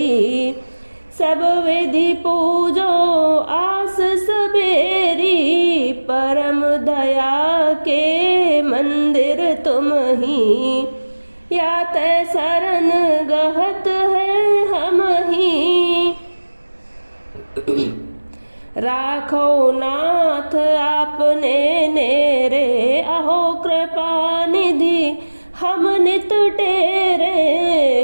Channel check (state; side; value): inverted; both; correlation -1.00